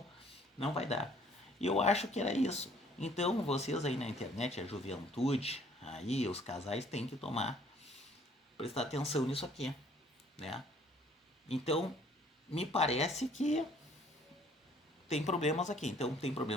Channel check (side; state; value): both; normal; correlation 0.58